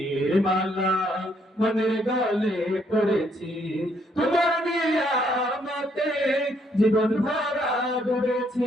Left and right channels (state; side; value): normal; both; correlation 0.71